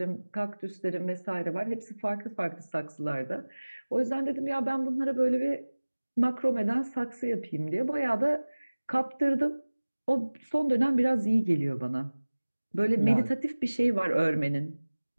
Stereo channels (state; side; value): inverted; both; correlation -1.00